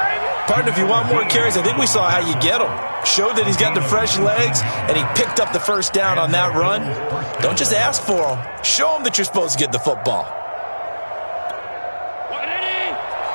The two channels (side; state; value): both; inverted; correlation -1.00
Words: Partner, if you want more carries, I think we saw how you get them. Showed that he's got the fresh legs, and he picked up the first down on that run. Don't just ask for them. Show them that you're supposed to get the football.